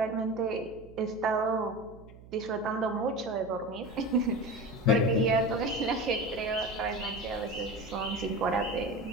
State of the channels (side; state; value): right; noise; hum, 19 dB below the sound